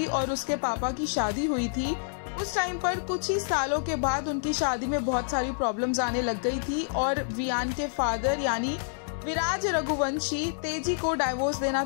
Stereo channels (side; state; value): right; silent; digital silence